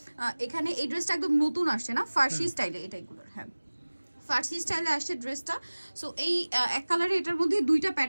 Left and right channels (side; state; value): both; inverted; correlation -1.00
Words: এখানে এই ড্রেসটা একদম নতুন আসছে না, ফার্সি স্টাইলে এটাইগুলোর। হ্যাঁ, ফার্সি স্টাইলে আসছে ড্রেসটা। সো এই এক কালারে এটার মধ্যে দুইটা